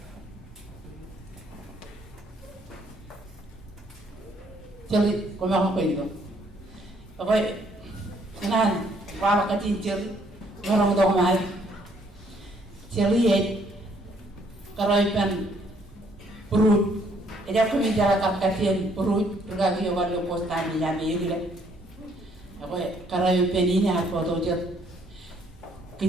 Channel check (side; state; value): both; normal; correlation 0.66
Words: Ceri, kumang apa itu? Apa? Kenan, para katin ceri, orang dong mai. Ceri karaipan perut. Ada kami jalan katin perut, bergagi orang yang postan ni jadi gila. Apa? Karaipan ini apa tu cer?